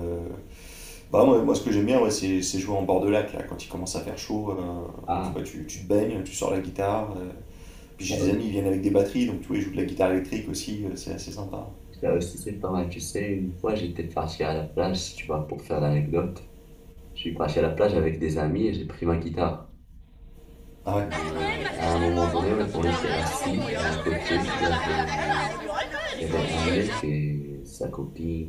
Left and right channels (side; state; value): both; identical; correlation 1.00